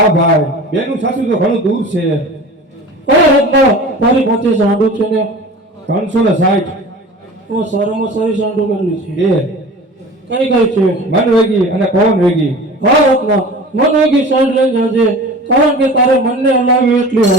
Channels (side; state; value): both; normal; correlation 0.38